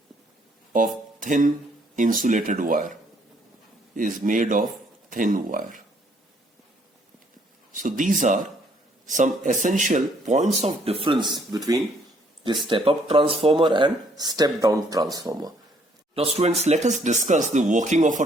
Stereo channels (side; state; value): both; normal; correlation 0.66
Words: of thin insulated wire, So these are some essential points of difference between the step-up transformer and step-down transformer. Now students, let us discuss the working of